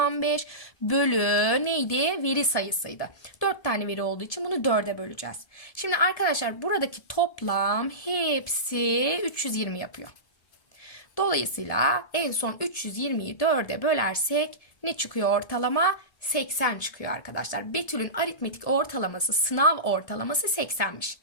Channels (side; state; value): right; late; 1.7 ms